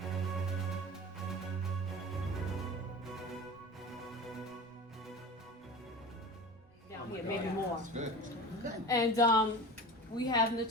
here, maybe more. Good. And we have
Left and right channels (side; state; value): both; normal; correlation 0.33